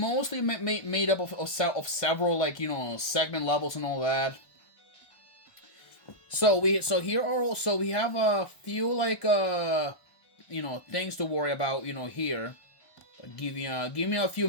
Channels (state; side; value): late; right; 1.6 ms